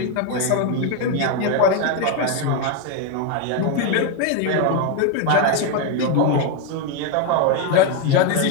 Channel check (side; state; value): both; different; correlation 0.02